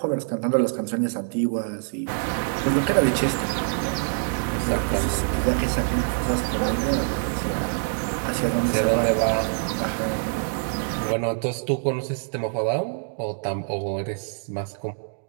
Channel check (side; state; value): left; silent; digital silence